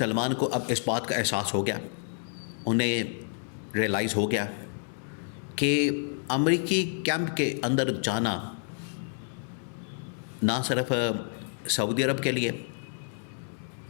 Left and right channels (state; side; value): silent; right; digital silence